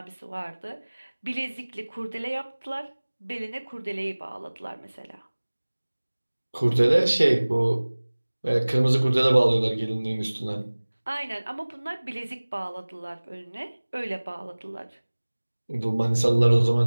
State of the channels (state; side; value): inverted; both; correlation -1.00